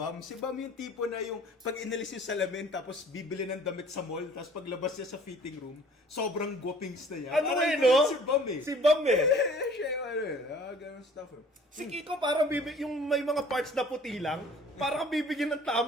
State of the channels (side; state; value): both; normal; correlation 0.51